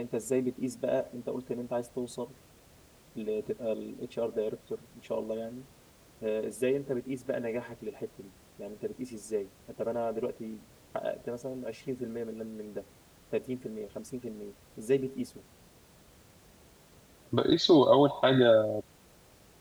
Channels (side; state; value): both; identical; correlation 1.00